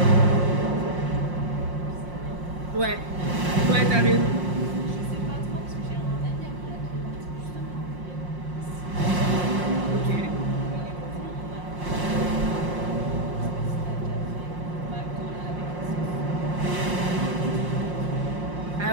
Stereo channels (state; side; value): late; left; 5.6 ms